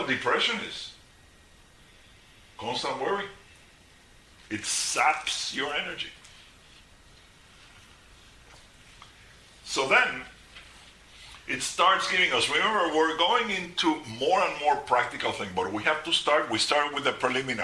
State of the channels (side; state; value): both; identical; correlation 1.00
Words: depression is. Constant worry. It saps your energy. So then, it starts giving us, remember, we're going into more and more practical things, but we start with the